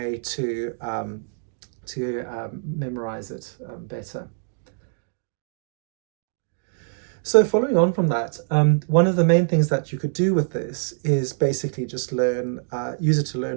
to memorize it better. So following on from that, one of the main things that you could do with this is basically just use it to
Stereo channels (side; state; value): left; silent; digital silence